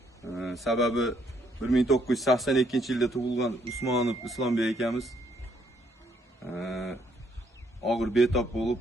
Sababi 1982-yilda tug'ilgan Usmonov Islombek akamiz og'ir betob bo'lib,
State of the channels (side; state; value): both; normal; correlation 0.70